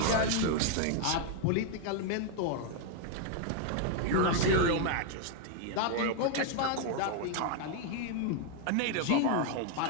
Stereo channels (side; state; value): both; different; correlation 0.00